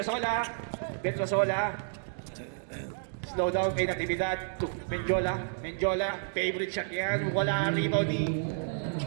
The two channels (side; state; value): left; silent; digital silence